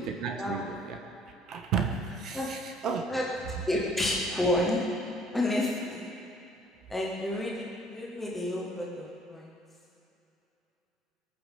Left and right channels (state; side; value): normal; both; correlation 0.57